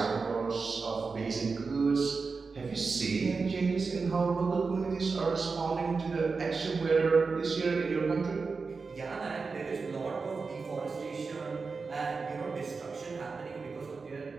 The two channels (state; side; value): quieter; left; 4.6 dB